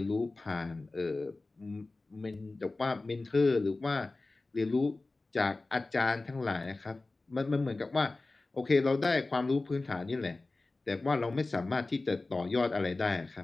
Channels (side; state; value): right; quieter; 3.3 dB